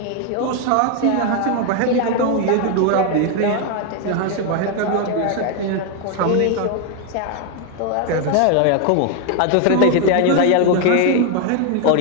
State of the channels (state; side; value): different; both; correlation 0.01